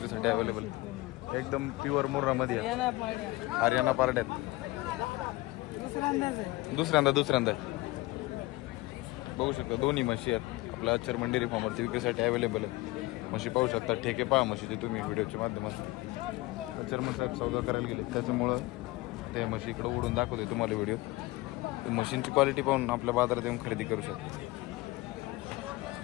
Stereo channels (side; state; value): right; quieter; 20.6 dB